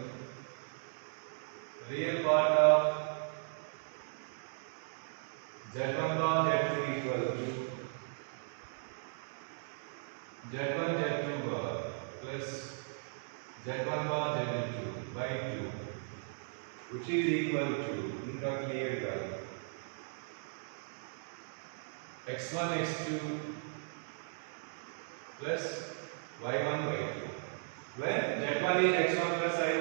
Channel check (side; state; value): left; silent; digital silence